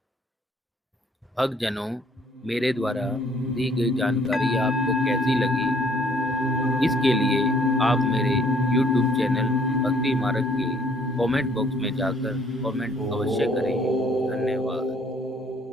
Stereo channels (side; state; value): both; normal; correlation 0.62